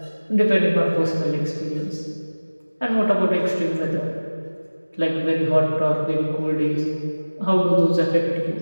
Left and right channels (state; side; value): inverted; both; correlation -1.00